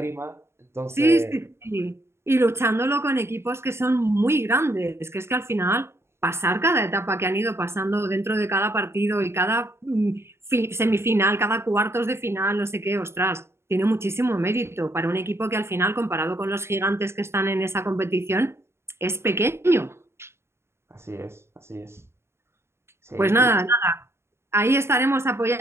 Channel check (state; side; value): late; left; 0.12 ms